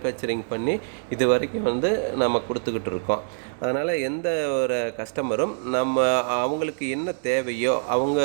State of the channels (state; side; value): silent; left; digital silence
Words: பண்ணி இது வரைக்கும் வந்து நம்ம கொடுத்துக்கிட்டு இருக்கோம். அதனால் எந்த ஒரு கஸ்டமரும் நம்ம அவங்களுக்கு என்ன தேவையோ, அவங்க